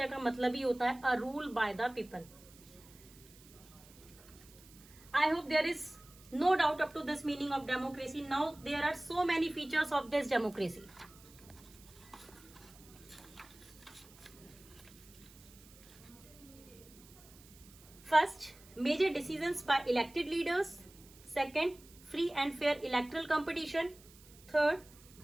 का मतलब ही होता है a rule by the people. I hope there is no doubt up to this meaning of democracy. Now there are so many features of this democracy. First, major decisions by elected leaders. Second, free and fair electoral competition. Third,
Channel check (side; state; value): right; noise; hiss, 23 dB below the sound